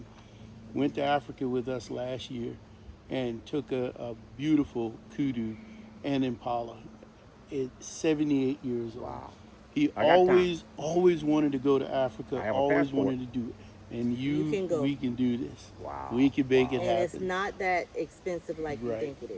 Went to Africa with us last year and took a beautiful kudu and impala at 78 years old. Wow. He I got always wanted to go to Africa, I have a always passport. wanted to do it. And You can go. we can do this. Wow. We can make it And happen. it's not that expensive like you Right. think it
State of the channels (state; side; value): identical; both; correlation 1.00